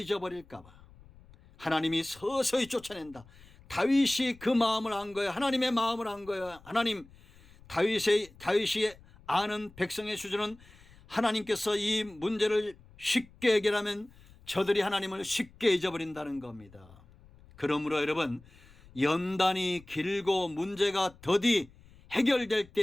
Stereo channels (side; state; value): left; noise; rumble, 24 dB below the sound